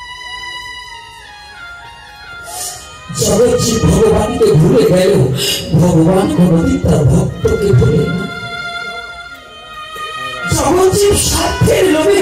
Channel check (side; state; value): both; identical; correlation 1.00